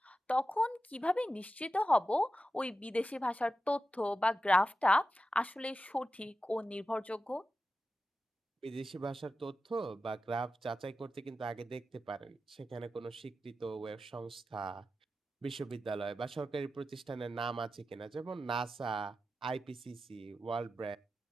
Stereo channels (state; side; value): normal; both; correlation 0.92